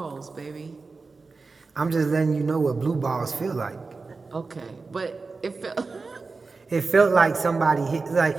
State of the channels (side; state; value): left; quieter; 4.1 dB